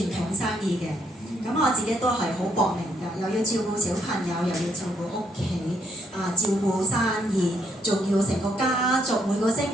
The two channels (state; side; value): normal; both; correlation 0.72